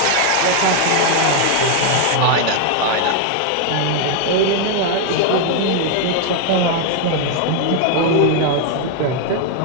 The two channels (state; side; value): different; both; correlation 0.00